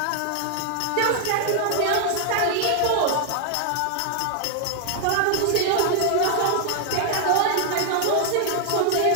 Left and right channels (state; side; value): different; both; correlation 0.00